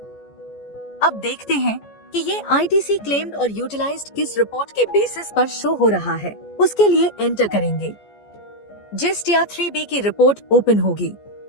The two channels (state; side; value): late; right; 14 ms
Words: अब देखते हैं कि ये आईटीसी क्लेम्ड और यूटिलाइज्ड किस रिपोर्ट के बेसिस पर शो हो रहा है। उसके लिए एंटर करेंगे। जिस्ट या 3B की रिपोर्ट ओपन होगी।